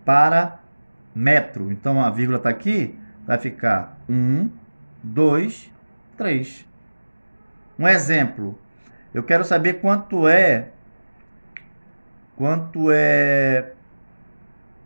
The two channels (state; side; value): inverted; both; correlation -1.00